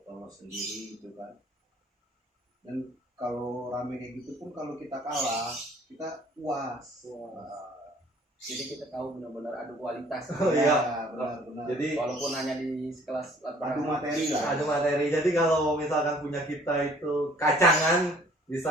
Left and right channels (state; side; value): normal; both; correlation 0.56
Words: sendiri gitu kan. Dan kalau rame kayak gitu pun kalau kita kalah, kita puas. Jadi kita tahu benar-benar adu kualitas. Oh iya, benar. Jadi Walaupun hanya di sekelas adu materi lah. ada materi. Jadi kalau misalkan punya kita itu kacangan